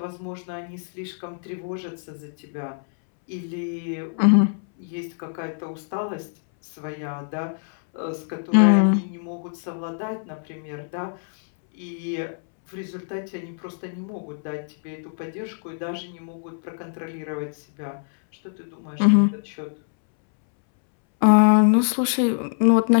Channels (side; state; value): right; silent; 62 dB below the other